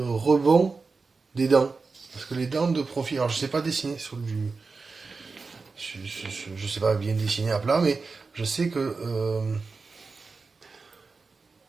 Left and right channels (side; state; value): left; quieter; 4.3 dB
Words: rebond des dents. Parce que les dents de profil, alors je sais pas dessiner sur du... Je sais pas bien dessiner à plat, mais je sais que...